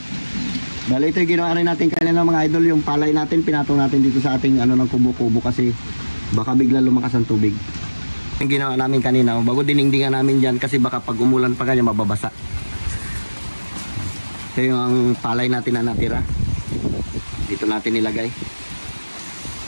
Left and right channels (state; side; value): inverted; both; correlation -1.00